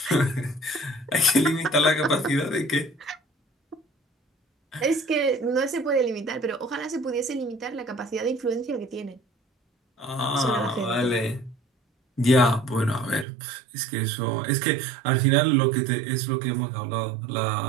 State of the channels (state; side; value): drops out; left; at 13.2 s